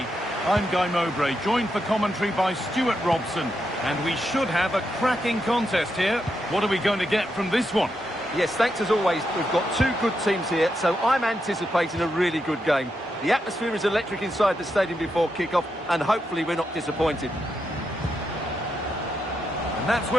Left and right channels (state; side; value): normal; both; correlation 0.83